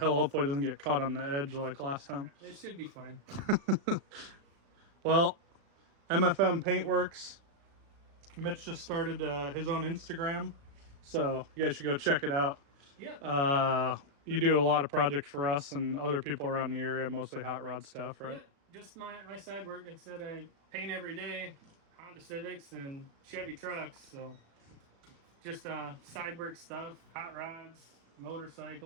Hopefully it doesn't get caught on the edge like last time. It should be fine. Well, MFM Paintworks. Mitch just started his own Instagram, so you guys should go check it out. Yeah. You do a lot of projects for us and other people around the area, mostly hot rod stuff, right? Yeah, just my side work. It said I paint every day, Honda Civics and Chevy trucks. So just side work stuff, hot rods,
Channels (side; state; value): left; late; 36 ms